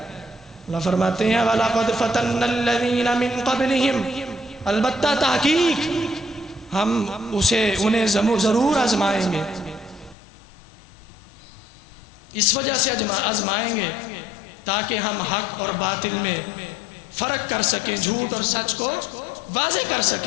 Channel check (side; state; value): right; drops out; at 10.2 s